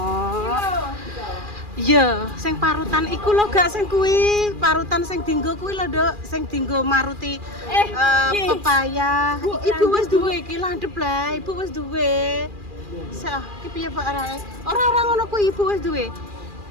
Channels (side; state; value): left; late; 2.4 ms